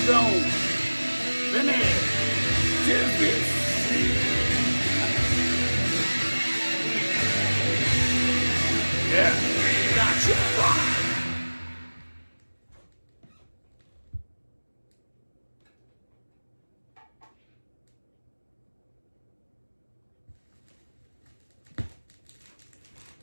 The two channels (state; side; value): inverted; both; correlation -1.00